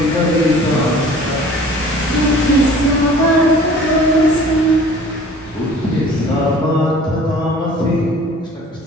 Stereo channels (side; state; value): both; normal; correlation 0.48